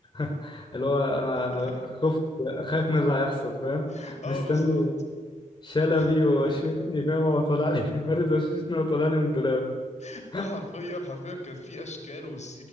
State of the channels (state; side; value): normal; both; correlation 0.75